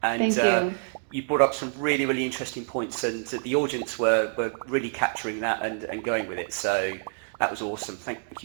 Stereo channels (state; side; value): silent; left; digital silence